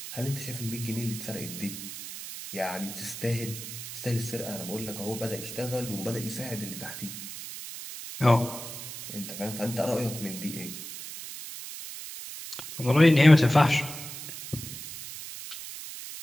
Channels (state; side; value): noise; right; hiss, 10 dB below the sound